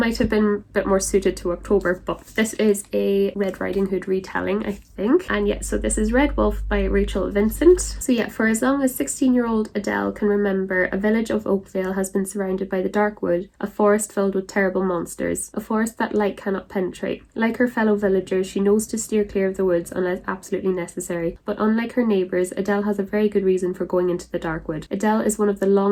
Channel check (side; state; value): both; identical; correlation 1.00